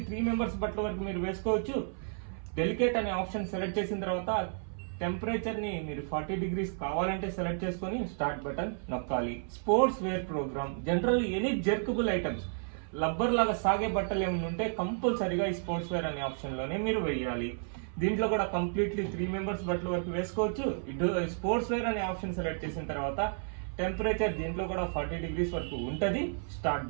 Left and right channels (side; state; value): left; silent; 56 dB below the other